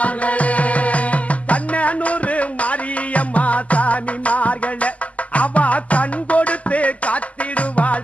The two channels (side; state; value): right; late; 0.070 ms